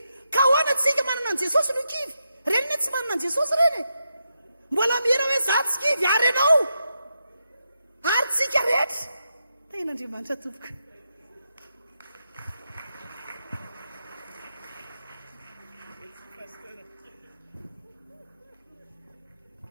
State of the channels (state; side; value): inverted; both; correlation -0.85